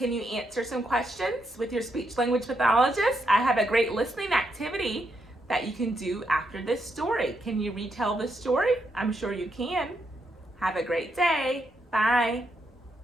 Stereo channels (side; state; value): both; normal; correlation 0.80